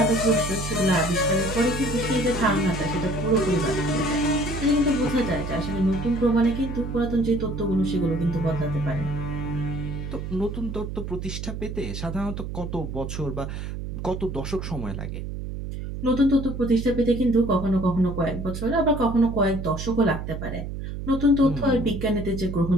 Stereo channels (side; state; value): right; noise; hum, 6 dB below the sound